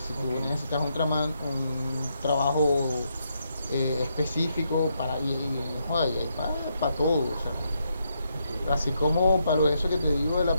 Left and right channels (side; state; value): both; inverted; correlation -0.79